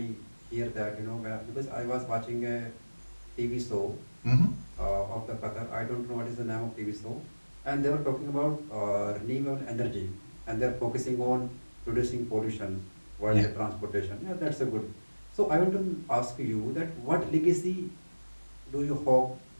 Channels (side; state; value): both; inverted; correlation -1.00